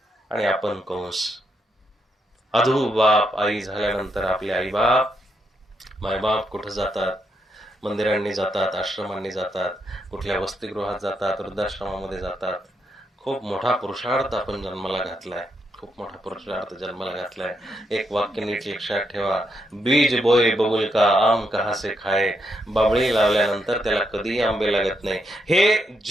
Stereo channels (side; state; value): both; normal; correlation 0.80